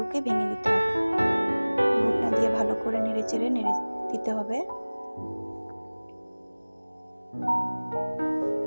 ভেঙে দিতে হবে। ঘুটনা দিয়ে ভালো করে নেড়ে দিতে হবে।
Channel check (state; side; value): inverted; both; correlation -1.00